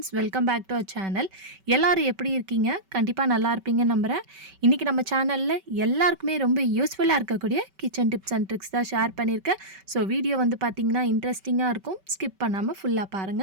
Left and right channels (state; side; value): late; left; 5.2 ms